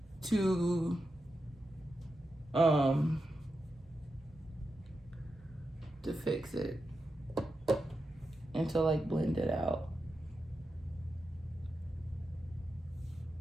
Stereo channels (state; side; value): normal; both; correlation 0.89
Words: to fix it and to like blend it out.